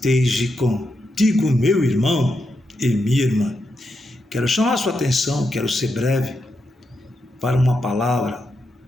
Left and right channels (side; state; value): both; normal; correlation 0.84